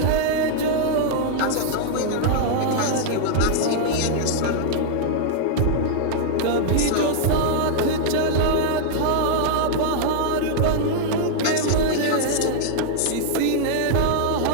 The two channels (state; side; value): different; both; correlation -0.01